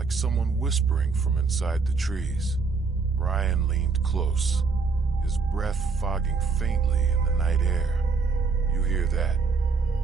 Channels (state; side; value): quieter; left; 4.7 dB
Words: someone whispering from inside the trees. Brian leaned close, his breath fogging faintly in the night air. You hear that?